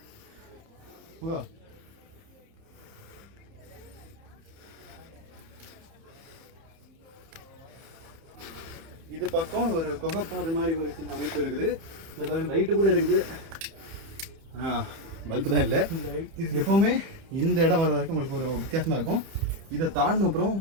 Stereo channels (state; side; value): late; left; 30 ms